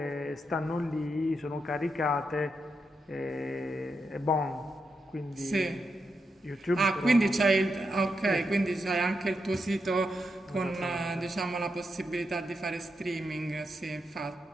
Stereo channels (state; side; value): normal; both; correlation 0.84